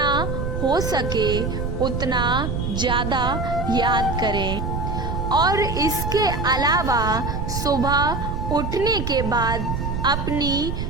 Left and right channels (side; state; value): right; noise; rumble, 3 dB below the sound